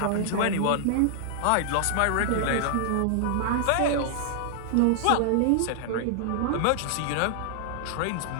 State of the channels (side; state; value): both; different; correlation -0.01